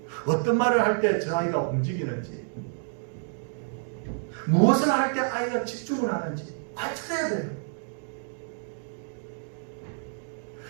어떤 말을 할 때 저 아이가 움직이는지, 무엇을 할 때 아이가 집중을 하는지 관찰해야 돼요.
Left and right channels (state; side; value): silent; left; digital silence